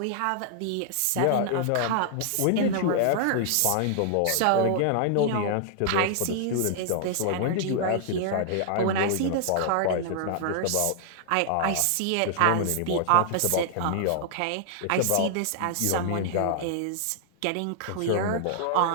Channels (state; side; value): different; both; correlation -0.01